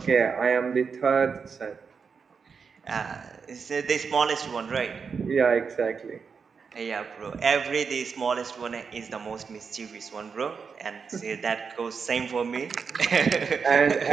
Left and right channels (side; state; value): left; quieter; 5.7 dB